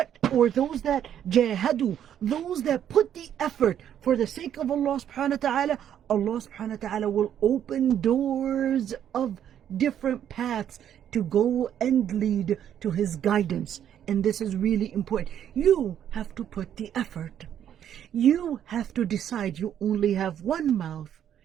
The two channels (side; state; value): left; quieter; 9.9 dB